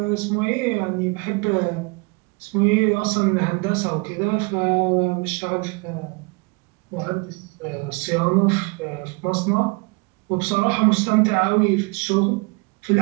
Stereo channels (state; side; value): quieter; left; 28.7 dB